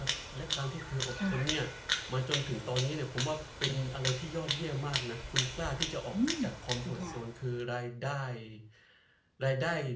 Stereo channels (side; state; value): both; identical; correlation 1.00